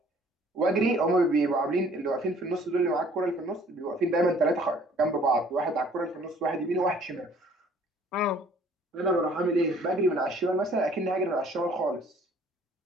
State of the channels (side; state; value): both; normal; correlation 0.56